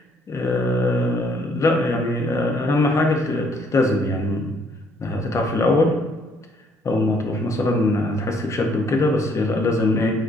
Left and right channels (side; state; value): both; normal; correlation 0.66